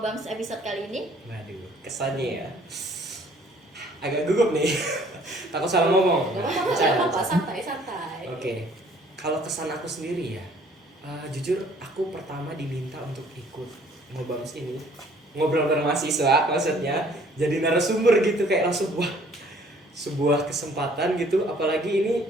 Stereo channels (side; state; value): both; normal; correlation 0.58